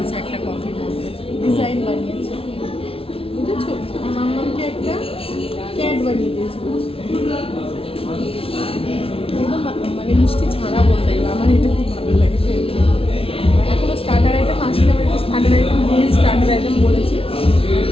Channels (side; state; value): right; late; 0.27 ms